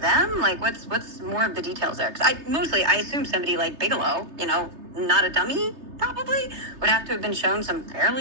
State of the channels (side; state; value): left; late; 3.3 ms